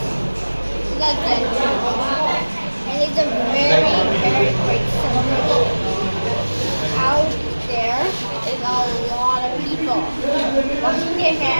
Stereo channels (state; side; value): inverted; both; correlation -1.00